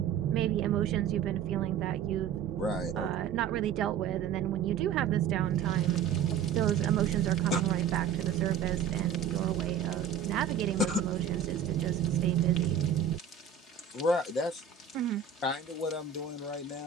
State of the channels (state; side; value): quieter; left; 7.9 dB